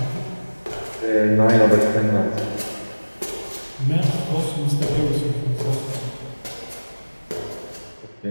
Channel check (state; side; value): inverted; both; correlation -1.00